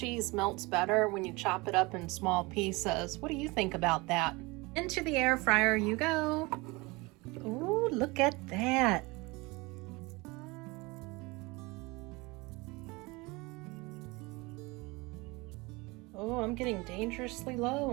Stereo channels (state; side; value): quieter; left; 24.5 dB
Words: melts better when you chop it up in small pieces. What do you think about that? Into the air fryer you go. Ooh, look at that. Oh, I'm getting dangerously low